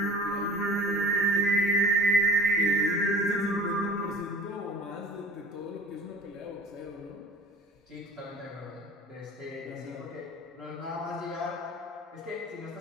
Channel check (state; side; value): normal; both; correlation 0.43